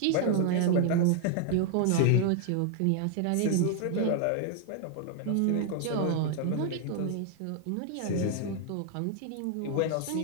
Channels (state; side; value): different; both; correlation 0.00